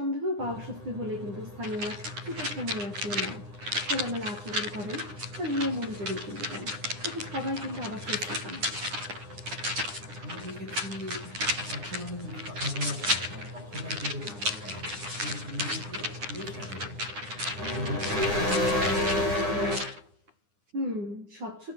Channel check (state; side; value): late; left; 9.8 ms